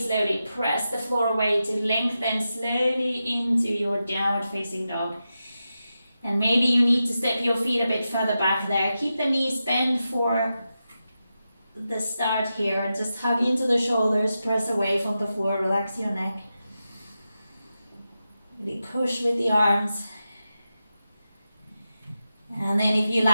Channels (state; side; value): inverted; both; correlation -0.90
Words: press the floor away to lengthen slowly into your downward facing dog. And maybe you need to step your feet a bit further back there. Keep the knees bent for the start here. Just hug into the shoulders, press away from the floor, relax your neck. Really push with the arms. And then if you